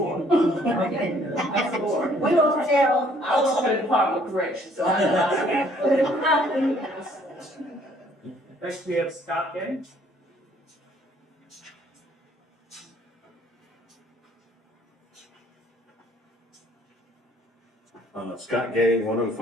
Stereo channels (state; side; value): normal; both; correlation 0.61